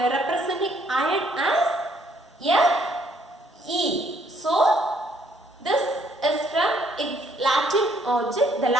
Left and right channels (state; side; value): normal; both; correlation 0.67